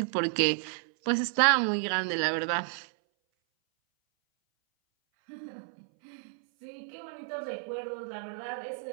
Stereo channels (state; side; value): silent; left; 57 dB below the other